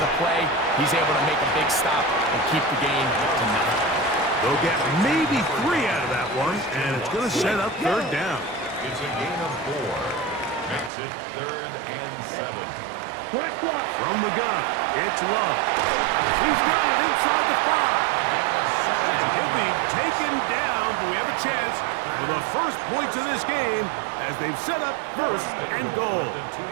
play. He's able to make a big stop and keep the game to nothing. They'll get maybe 3 out of that one, and it's going to set up third down. It's a gain of 4. Makes it third and 7. From the gun, it's Love. He's got it inside the 5. And he'll be taken down, but we have a chance for the first points of this game as they've set up first and goal. The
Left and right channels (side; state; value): left; drops out; at 10.9 s